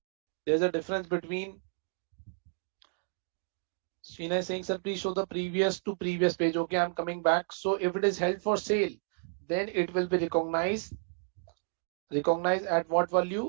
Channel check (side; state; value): left; silent; digital silence